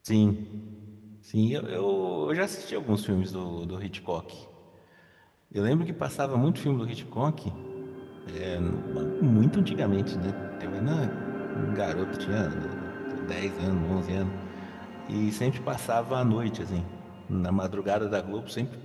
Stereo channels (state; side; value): identical; both; correlation 1.00